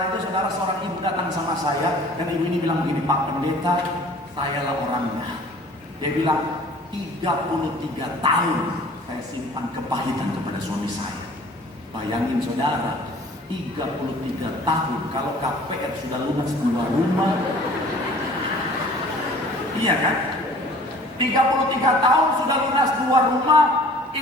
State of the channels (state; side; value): normal; both; correlation 0.49